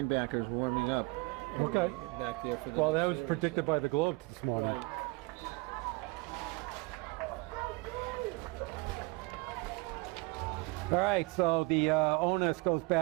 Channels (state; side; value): quieter; left; 25.5 dB